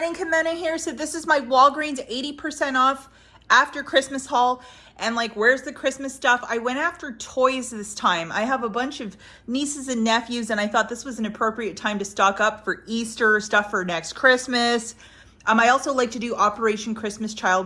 Kimono here. So this is my Walgreens 80% off after Christmas haul. And like, where's the Christmas stuff? I went after toys this time. I have a bunch of nieces and nephews, and I thought this was an appropriate time to stock up for Easter, stuff for next Christmas. I also like to do Operation Christmas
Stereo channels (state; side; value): identical; both; correlation 1.00